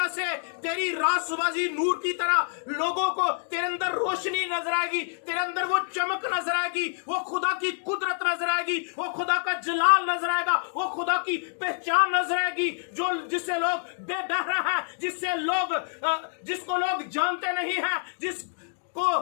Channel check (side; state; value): right; silent; digital silence